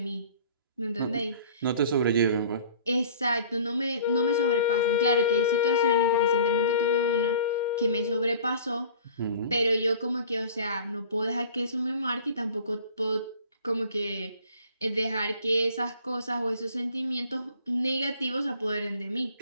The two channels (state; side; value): inverted; both; correlation -0.47